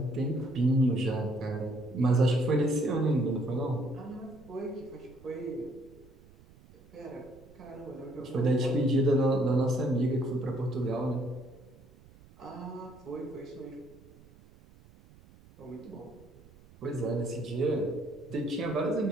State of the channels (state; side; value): noise; right; rumble, 24 dB below the sound